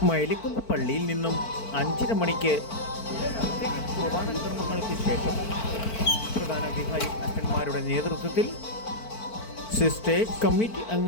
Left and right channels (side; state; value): right; late; 4.5 ms